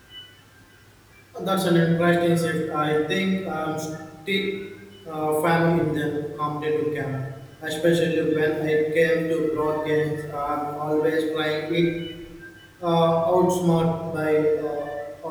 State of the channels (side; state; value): both; identical; correlation 1.00